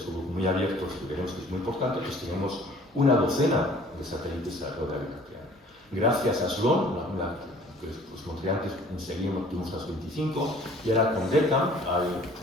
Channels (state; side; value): normal; both; correlation 0.52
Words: muy abiertos, que veremos que es muy importante, pues tenemos una docena de satélites alrededor de la Vía Láctea. Gracias a Sloan, que os mostré antes, enseguida tuvimos las 25, y ahora con DECAM hay